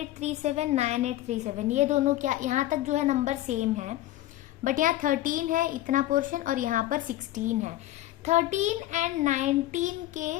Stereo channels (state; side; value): quieter; right; 15.1 dB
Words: ये दोनों क्या, यहाँ तक जो है नंबर सेम है, बट यहाँ 13 है इतना पोर्शन और यहाँ पर 16 है। 13 एंड 19